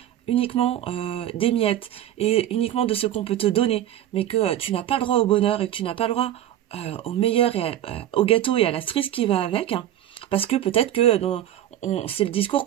uniquement des miettes et uniquement de ce qu'on peut te donner, mais que tu n'as pas le droit au bonheur et que tu n'as pas le droit au meilleur et au gâteau et à la cerise qui va avec, parce que peut-être que c'est le discours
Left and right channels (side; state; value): left; quieter; 12.1 dB